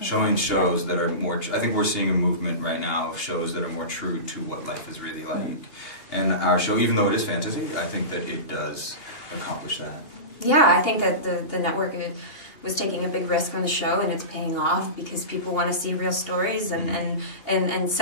Showing shows that are more, I think we're seeing a movement right now of shows that are more true to what life is really like. And our show, even though it is fantasy, I think that it does accomplish that. Yeah, I think that the network was taking a big risk on the show, and it's paying off because people want to see real stories, and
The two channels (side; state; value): right; late; 2.8 ms